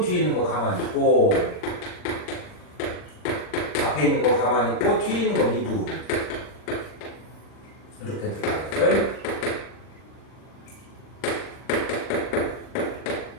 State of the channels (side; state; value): right; late; 39 ms